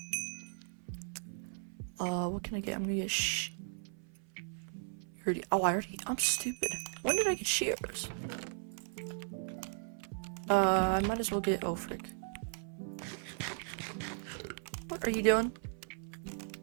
What can I get? I'm gonna get I'm stupid. When did I get shears? I might as well get frick. What are you doing?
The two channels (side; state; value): left; silent; 53 dB below the other